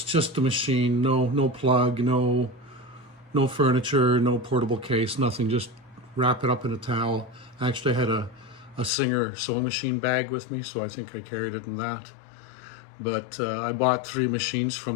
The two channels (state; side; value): drops out; right; at 8.9 s